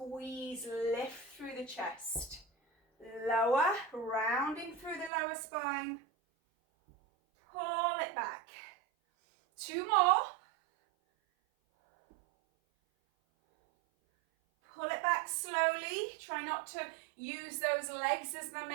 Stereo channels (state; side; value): drops out; left; at 5.1 s